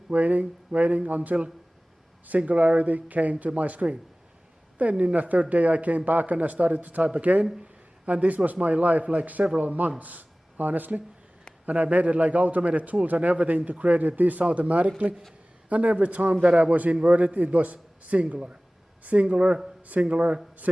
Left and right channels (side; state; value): both; normal; correlation 0.98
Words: until singularity came to my screen. Then in the third day I came back and I started to type again, and this was my life like several months, honestly. And I made it like automated tools and everything to create this automatically. And every time that I was inverted, it was singular. Singular, singular,